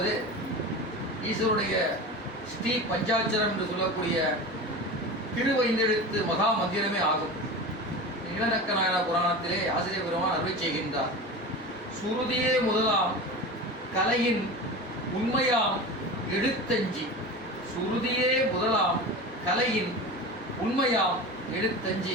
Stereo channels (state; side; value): normal; both; correlation 0.30